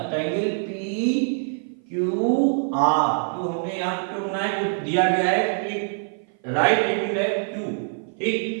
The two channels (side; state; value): left; silent; 55 dB below the other